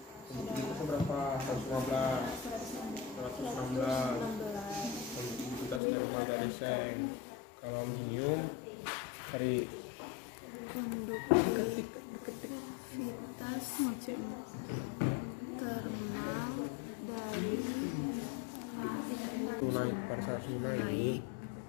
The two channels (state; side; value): drops out; right; at 5.8 s